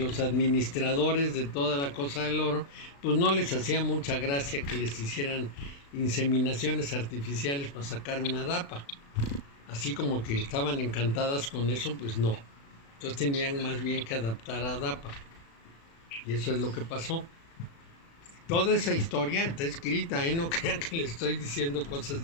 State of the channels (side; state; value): right; late; 36 ms